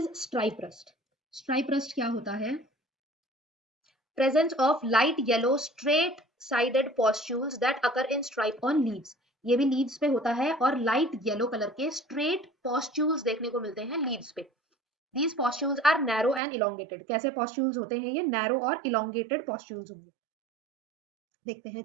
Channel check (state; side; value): drops out; left; at 16.4 s